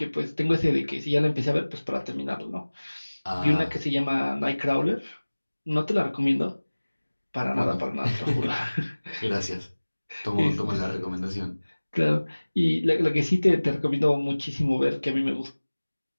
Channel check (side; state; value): both; inverted; correlation -1.00